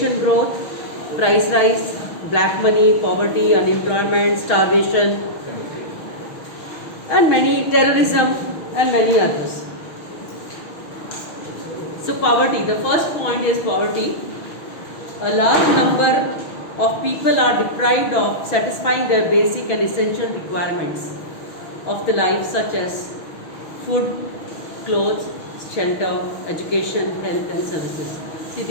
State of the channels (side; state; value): right; late; 6.3 ms